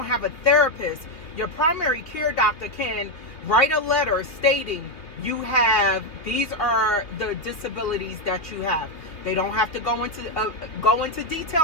have a therapist, your primary care doctor can write a letter stating these are the disabilities that you have. They don't have to go into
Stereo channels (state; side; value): late; right; 3.0 ms